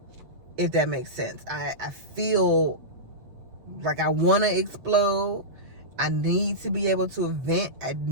if that makes sense. I feel like I want to explode. I need to be able to vent. I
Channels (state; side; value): late; left; 8.0 ms